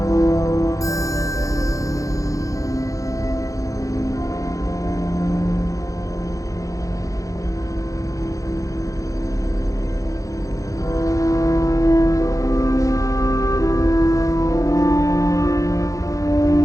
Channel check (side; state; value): right; late; 0.16 ms